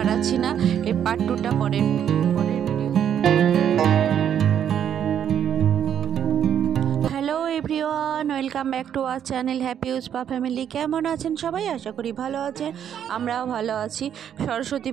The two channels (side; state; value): left; quieter; 9.2 dB